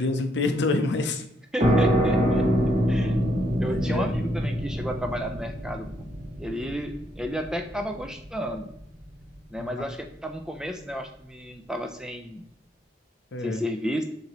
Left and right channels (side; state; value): both; normal; correlation 0.74